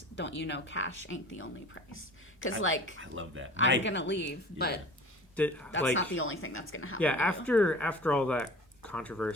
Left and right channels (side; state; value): both; normal; correlation 0.41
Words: Don't you know cash ain't the only price? Because, I love that. I'm going to leave, but Did, that's like, not the only thing that's going to happen. yeah, to you. after all that